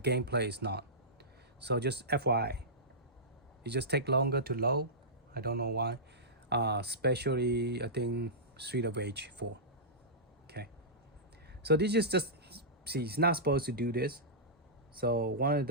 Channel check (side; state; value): both; normal; correlation -0.15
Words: is not. So just FYI, it just takes longer to load. I don't know why. Especially I think Street of Rage 4. Okay. So this is just, see, it's not supposed to do this. So one of